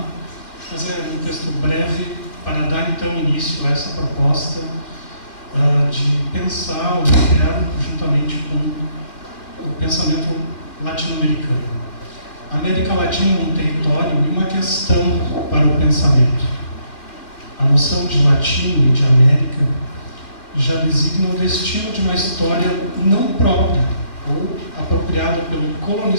Mas é um texto breve para dar, então, início a essa proposta de pensar o inferno juntamente com o pensamento latino-americano. A América Latina é um território e uma questão para o pensamento. A noção de latino e de América já designa o destino de uma história não própria ou apropriada pelo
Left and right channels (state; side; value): late; right; 2.3 ms